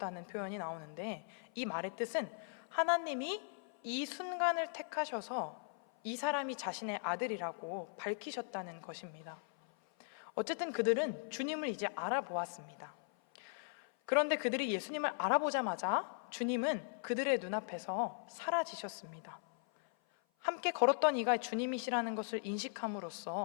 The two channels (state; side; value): silent; right; 52 dB below the other